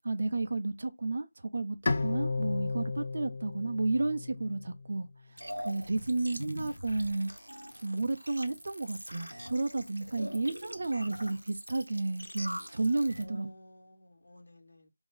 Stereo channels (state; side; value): inverted; both; correlation -0.96